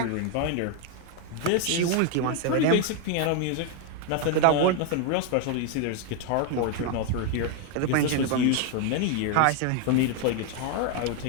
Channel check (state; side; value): different; both; correlation 0.01